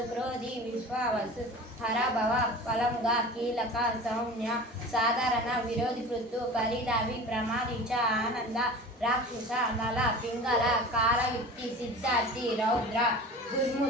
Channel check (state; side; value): normal; both; correlation 0.37